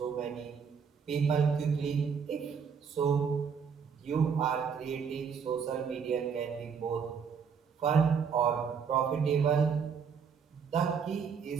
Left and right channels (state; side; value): quieter; left; 6.5 dB